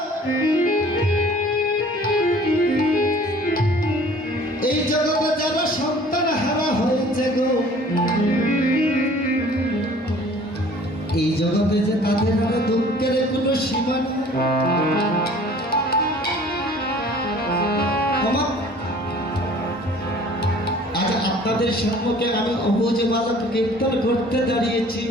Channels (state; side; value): normal; both; correlation 0.51